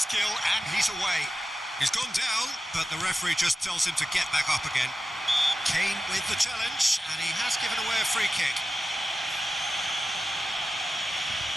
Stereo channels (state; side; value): normal; both; correlation 0.94